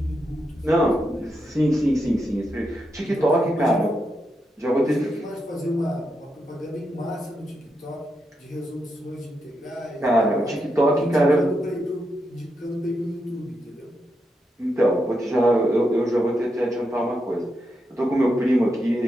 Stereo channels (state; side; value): normal; both; correlation 0.84